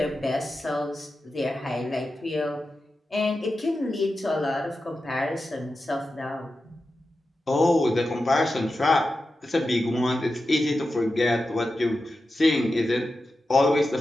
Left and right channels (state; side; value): normal; both; correlation 0.91